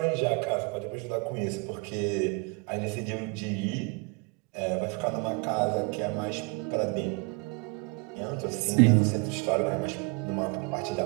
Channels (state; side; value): quieter; left; 30.4 dB